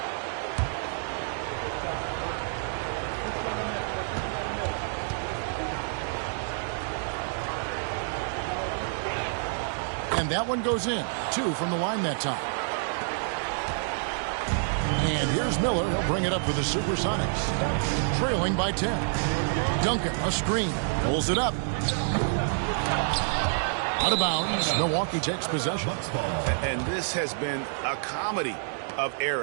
And that one goes in. 2 from the line that time. And here's Miller. He'll bring it up for the Supersonics. Trailing by 10. Duncan, a screen. Pulls it up. Out of bounds. Milwaukee takes possession. And this has been a comedy of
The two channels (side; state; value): left; silent; digital silence